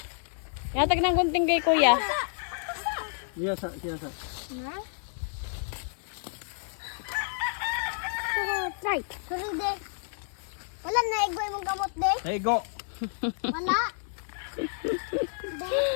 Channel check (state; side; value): silent; right; 58 dB below the other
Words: Inatag ng gunting kay kuya. Iya sa. Na? Try. Sorry, de. Wala na igoy mong gamot, de. Hey, go. Wala. De.